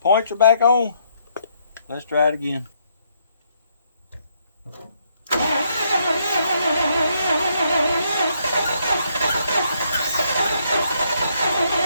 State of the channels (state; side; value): inverted; both; correlation -0.72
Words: Points are back on. Let's try it again.